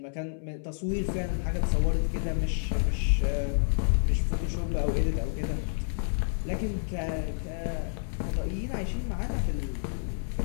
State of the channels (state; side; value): silent; right; 58 dB below the other